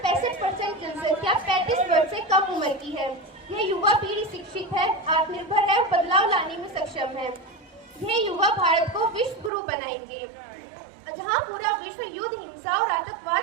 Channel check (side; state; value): left; drops out; at 9.5 s